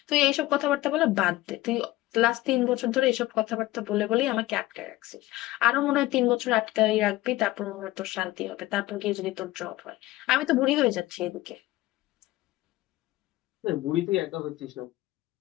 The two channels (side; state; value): right; quieter; 17.6 dB